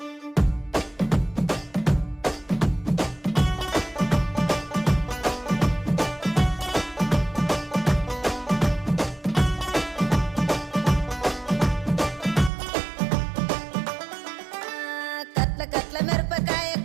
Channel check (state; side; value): drops out; left; at 12.5 s